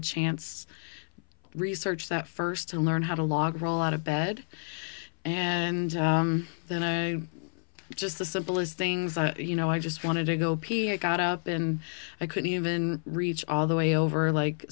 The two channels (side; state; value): right; silent; 55 dB below the other